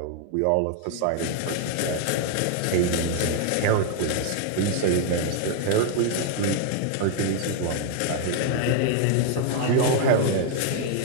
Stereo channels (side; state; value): both; different; correlation 0.00